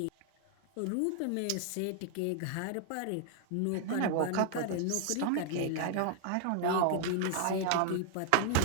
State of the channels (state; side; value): different; both; correlation -0.01